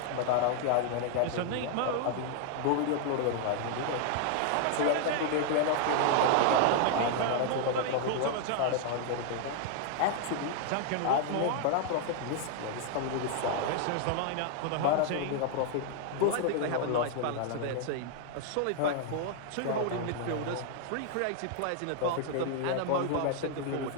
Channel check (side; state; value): both; different; correlation 0.00